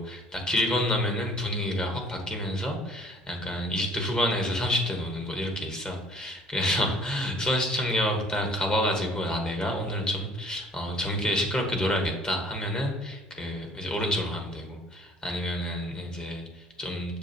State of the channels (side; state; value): both; normal; correlation 0.55